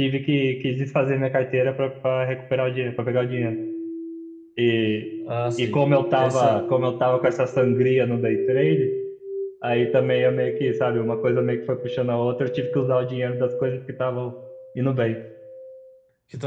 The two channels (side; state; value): both; identical; correlation 1.00